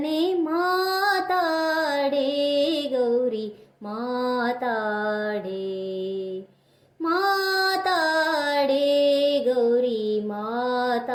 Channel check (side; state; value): both; identical; correlation 1.00